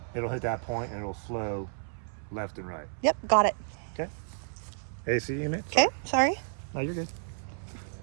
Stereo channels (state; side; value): silent; left; 57 dB below the other